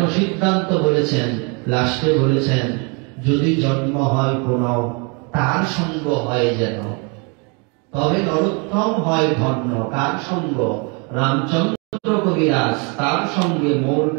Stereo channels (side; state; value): left; quieter; 33.2 dB